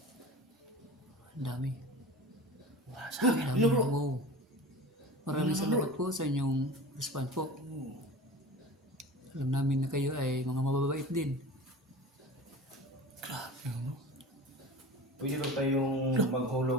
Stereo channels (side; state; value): both; normal; correlation 0.35